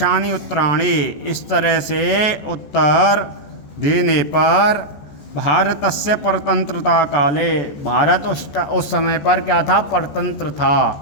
उत्तराणि, इस तरह से उत्तर देने पर भारतस्य परतंत्रता काले, भारत उस समय पर क्या था? परतंत्र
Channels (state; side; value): late; right; 14 ms